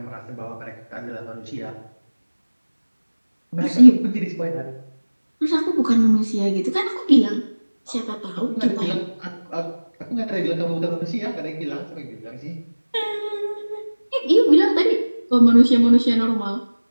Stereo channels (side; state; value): both; inverted; correlation -1.00